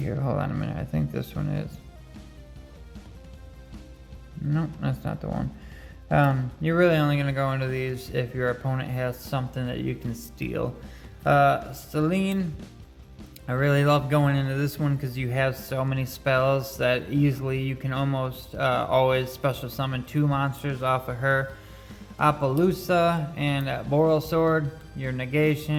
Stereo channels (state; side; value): identical; both; correlation 1.00